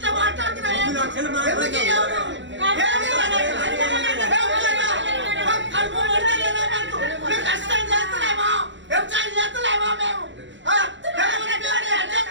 మాట్లాడుతున్నావు కష్టం చేస్తున్నామా వ్యవసాయం చేస్తున్నామా మేము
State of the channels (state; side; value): late; left; 0.54 ms